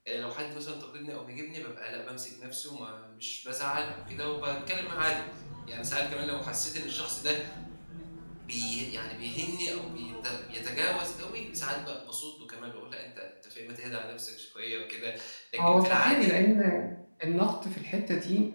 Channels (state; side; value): inverted; both; correlation -1.00